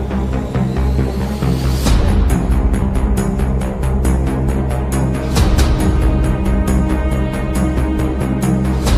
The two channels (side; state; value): both; identical; correlation 1.00